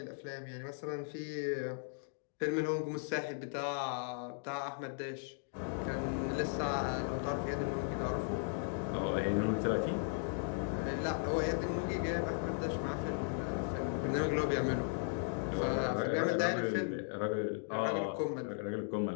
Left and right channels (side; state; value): right; silent; digital silence